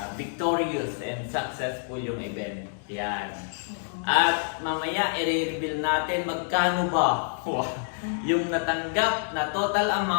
victorious and successful yung event. Yan. At mamaya i-reveal natin magkano ba yung natanggap na total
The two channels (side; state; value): right; silent; digital silence